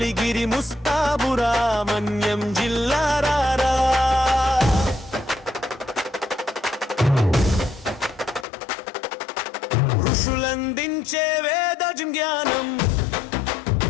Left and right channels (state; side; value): drops out; right; at 8.5 s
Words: ముస్తాబురా మన్యం జిల్లారారా ఋషులందించే వేద జ్ఞానం